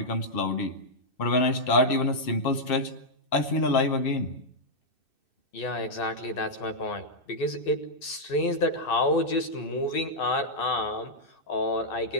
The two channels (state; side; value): late; right; 2.6 ms